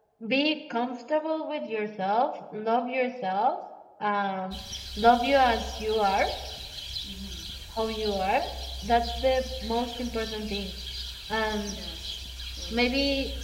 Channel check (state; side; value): identical; both; correlation 1.00